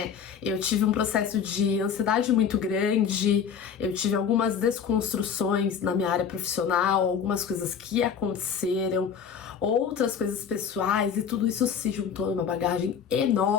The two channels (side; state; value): right; quieter; 7.2 dB